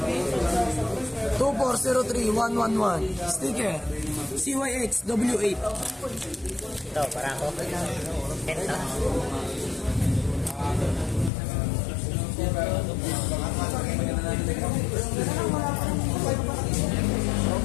2403111 sticker, CYX W8. Ito, para ako. Ito.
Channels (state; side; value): drops out; right; at 11.3 s